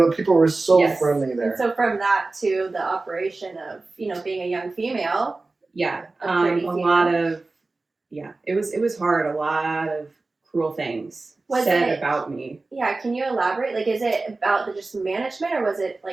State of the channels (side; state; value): left; quieter; 3.4 dB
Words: people were so friendly there. And so from that to the operation of being a young female. Yeah. A pretty lot of it was hard. A lot of cruel things said about me. Yeah, can you elaborate? Like, is it about the just management, or was it